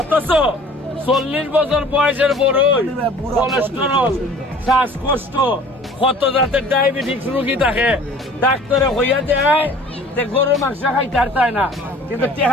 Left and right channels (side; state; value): both; normal; correlation 0.48